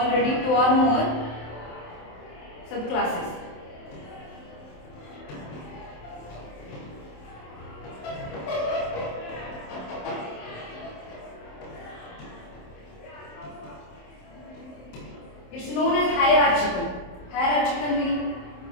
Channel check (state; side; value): late; right; 27 ms